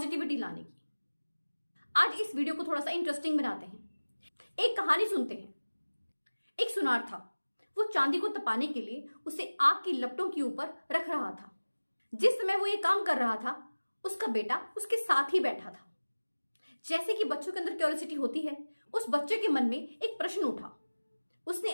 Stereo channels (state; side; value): inverted; both; correlation -1.00